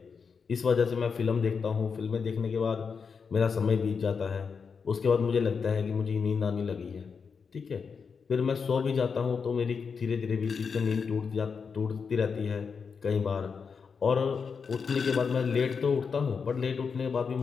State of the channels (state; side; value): quieter; right; 5.7 dB